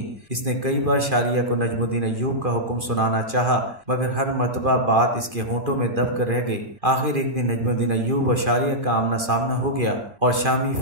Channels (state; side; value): late; left; 2.4 ms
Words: اس نے کئی بار شاریہ کو نجم الدین ایوب کا حکم سنانا چاہا، مگر ہر مرتبہ بات اس کے ہونٹوں میں دب کر رہ گئی۔ آخر ایک دن نجم الدین ایوب اور شاریہ کا آمنا سامنا ہو گیا اور شامی